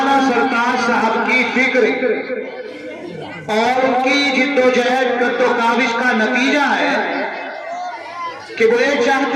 سرکار صاحب کی فکر اور ان کی جد و جہد جد و کاوش کا نتیجہ ہے کہ وہ یہ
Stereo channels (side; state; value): both; identical; correlation 1.00